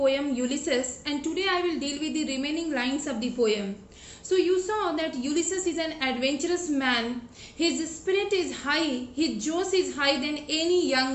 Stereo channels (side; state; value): both; identical; correlation 1.00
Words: Ulysses, and today I will deal with the remaining lines of the poem. So you saw that Ulysses is an adventurous man. His spirit is high, his josh is higher than any